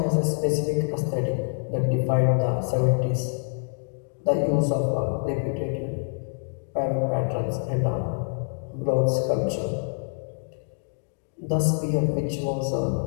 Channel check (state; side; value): silent; right; digital silence